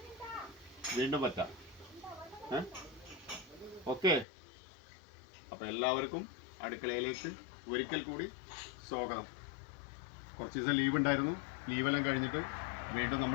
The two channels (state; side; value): drops out; right; at 4.2 s